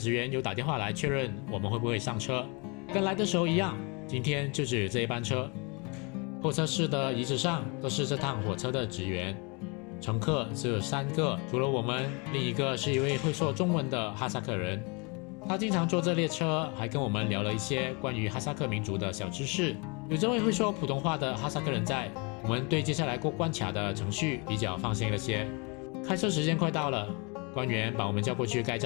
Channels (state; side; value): quieter; right; 31.0 dB